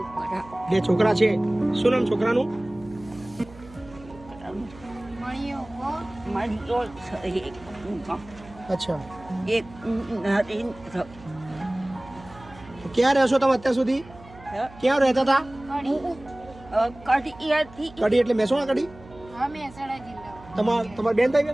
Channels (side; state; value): right; noise; hum, 21 dB below the sound